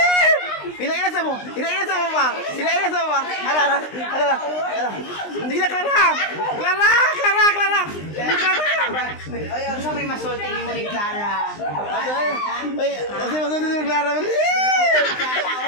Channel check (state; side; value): late; right; 20 ms